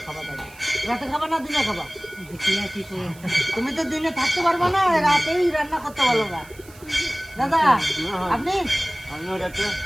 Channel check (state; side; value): noise; right; hiss, 23 dB below the sound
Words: খাবা। দাদা রাতে খাবা না দিনে খাবা? দেখি না কি করে, তুমি তো দিনে থাকতে পারবা না, রাতেই রান্না করতে পারো না। দাদা আপনি